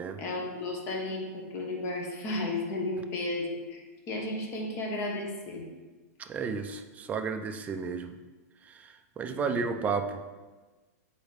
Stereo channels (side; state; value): both; normal; correlation 0.08